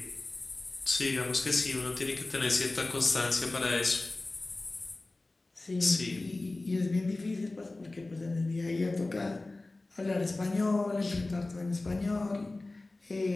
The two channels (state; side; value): quieter; right; 3.0 dB